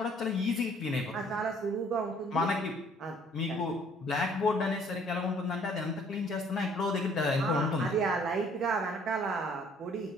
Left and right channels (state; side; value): normal; both; correlation 0.59